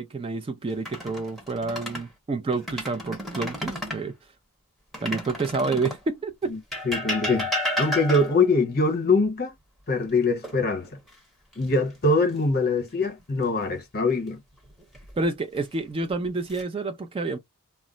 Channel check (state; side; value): normal; both; correlation 0.44